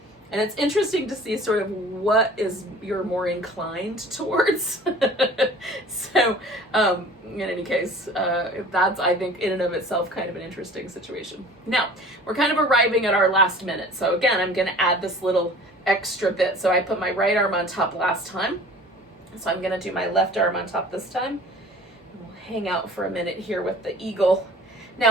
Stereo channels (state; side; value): normal; both; correlation 0.45